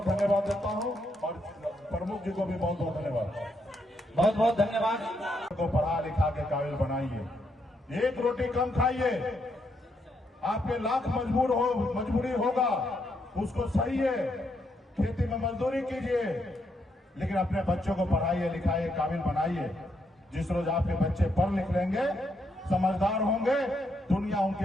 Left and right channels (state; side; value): normal; both; correlation 0.78